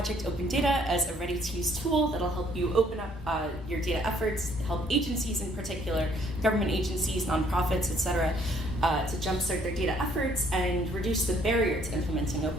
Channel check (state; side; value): normal; both; correlation 0.64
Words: Open Data as a ready-to-use tool that'll help you open up your data efforts, help agencies in particular, government agencies, nonprofits, etc., to jumpstart their data efforts and reduce the barrier to implementing